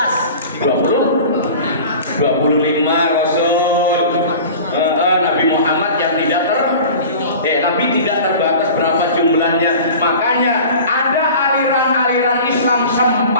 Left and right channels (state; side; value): inverted; both; correlation -0.39